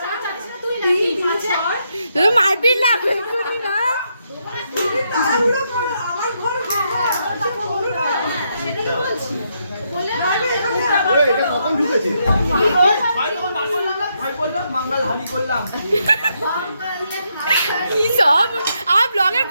মারপিট লাগবে না, এটা কখন ঢুকেছে? কি সব আমার ব্লগের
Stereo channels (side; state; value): both; inverted; correlation -0.78